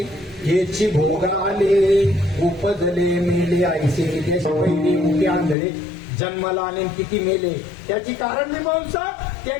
याची भोग आले, उपजले मेले ऐसे नितेश पहिली मुके आंधळे जन्माला आले किती मेले. त्याची कारण मीमांसा.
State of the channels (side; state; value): right; drops out; at 5.6 s